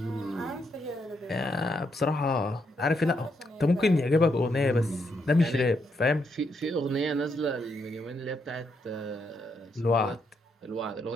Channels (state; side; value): normal; both; correlation 0.78